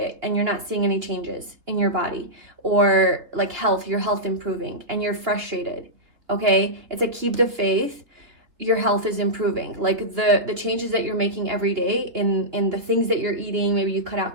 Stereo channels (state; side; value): late; left; 3.5 ms